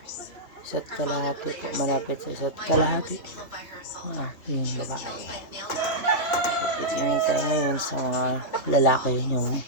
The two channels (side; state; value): right; late; 2.6 ms